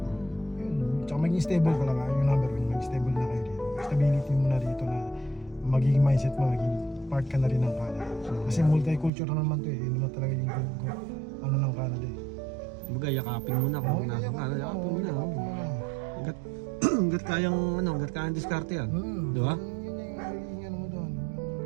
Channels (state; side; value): drops out; left; at 9.1 s